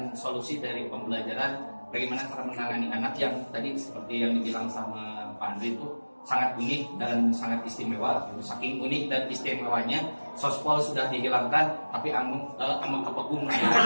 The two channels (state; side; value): inverted; both; correlation -1.00